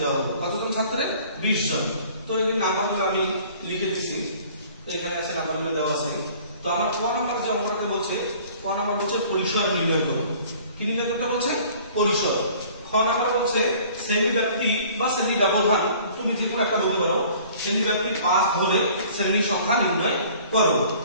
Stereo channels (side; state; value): both; inverted; correlation -0.51